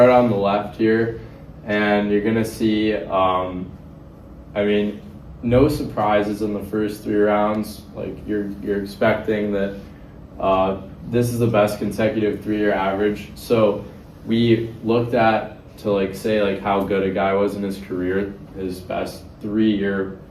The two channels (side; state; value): both; identical; correlation 1.00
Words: on the left here and you're gonna see, no surprises in the first 3 rounds. Like you're expecting that this is the best consecutive 3-year average. So we looked at to like say like how good a guy was in his career, his best 3-year,